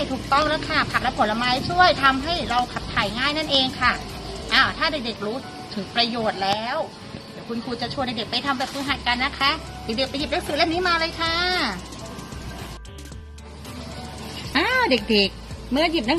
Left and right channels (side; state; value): both; identical; correlation 1.00